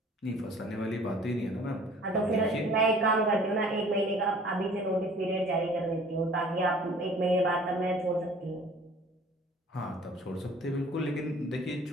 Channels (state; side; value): normal; both; correlation 0.51